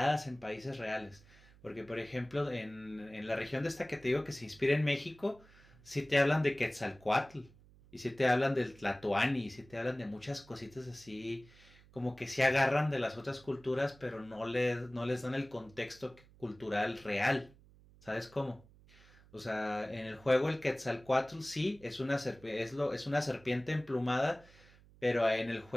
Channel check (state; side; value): noise; right; hum, 25 dB below the sound